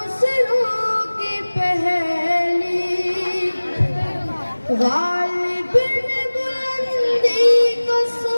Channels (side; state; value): both; inverted; correlation -1.00